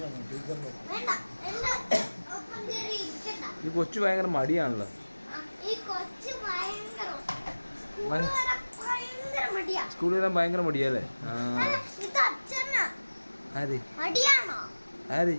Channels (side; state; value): both; inverted; correlation -1.00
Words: ടീച്ചറിന്റെ. വേണ്ട, ഒപ്പം കയറി ഇരിക്കണ്ട. ഈ കൊച്ചു ഭയങ്കര മടിയാണല്ലോ. ഈ കൊച്ചു ഭയങ്കര മടിയാ. സ്കൂളിൽ വരാൻ ഭയങ്കര മടിയല്ലേ? ഇത് അച്ഛനാ. ആര് മടിയാണോ ആര്?